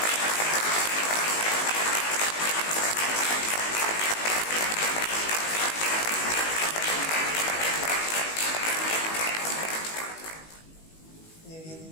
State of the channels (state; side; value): late; right; 19 ms